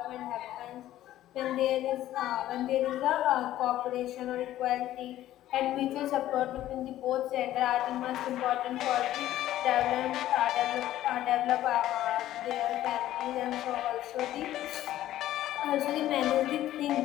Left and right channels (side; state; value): right; quieter; 13.6 dB